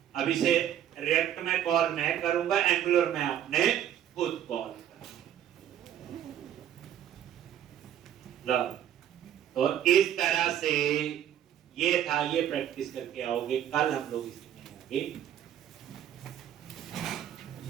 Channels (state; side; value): quieter; left; 10.7 dB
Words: अब इसे रिएक्ट में कॉल मैं करूंगा एंगुलर में आपने खुद कॉल करना। तो इस तरह से ये था। ये प्रैक्टिस करके आओगे कल हम लोग इसमें आगे